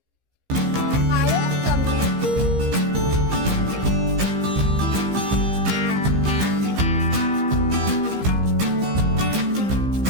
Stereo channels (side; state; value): left; late; 15 ms